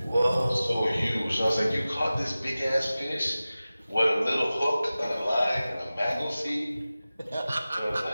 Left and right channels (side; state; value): both; inverted; correlation -0.96